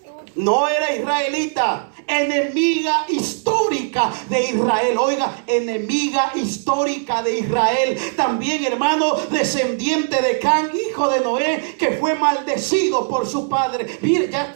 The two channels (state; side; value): silent; left; 66 dB below the other